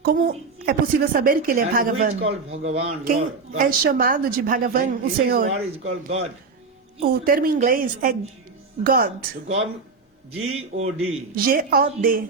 Como é possível saber que ele é And who is Bhagavan? called Bhagavan? Quem Lord, God. é chamado de Bhagavan, o His Senhor? word is called God. O termo em inglês é God. So God, G-O-D. G-O-D.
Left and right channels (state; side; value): quieter; left; 4.5 dB